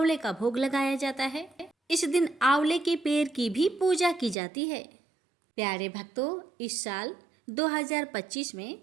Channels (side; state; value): left; drops out; at 4.4 s